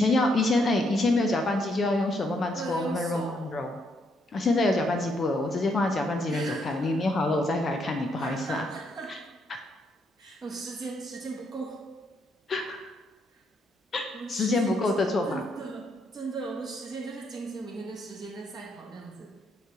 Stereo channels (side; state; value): both; normal; correlation 0.75